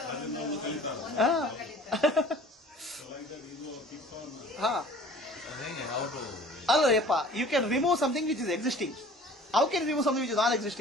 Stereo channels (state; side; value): normal; both; correlation 0.48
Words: ಅದನ್ನ ನಾವು ಕಲಿತಾರೆ. So like that ego keeps on. How to... Allayappa, you can remove something which is existing. How can you remove something which is not